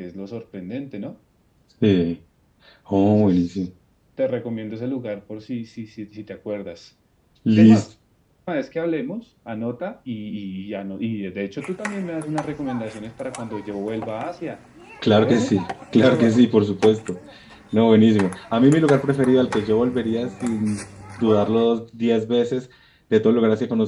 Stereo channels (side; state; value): both; identical; correlation 1.00